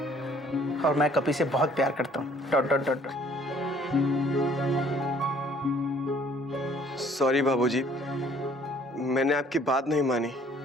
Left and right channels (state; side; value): normal; both; correlation 0.58